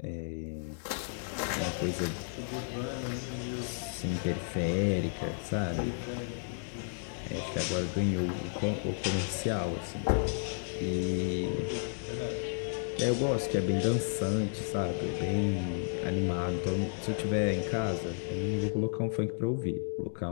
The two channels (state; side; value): silent; right; digital silence